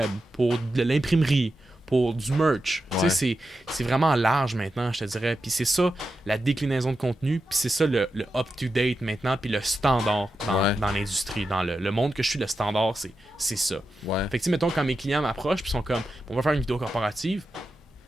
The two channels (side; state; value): both; normal; correlation 0.89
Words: pour de l'imprimerie, pour du merch. Ouais. Tu sais, c'est vraiment large maintenant, je te dirais. Puis c'est ça, la déclinaison de contenu, puis c'est ça le up-to-date maintenant, puis le standard dans l'industrie. Dans le monde que je suis, le standard, c'est ça. Ouais. Fait que, tu sais, mettons, quand mes clients m'approchent, puis sont comme, on va faire une vidéo corporative,